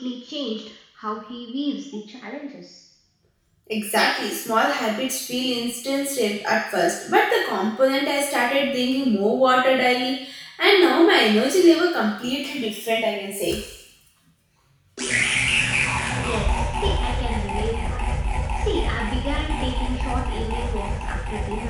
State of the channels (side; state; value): both; identical; correlation 1.00